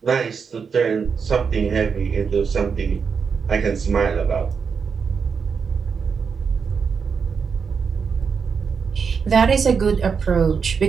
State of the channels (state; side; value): quieter; left; 5.9 dB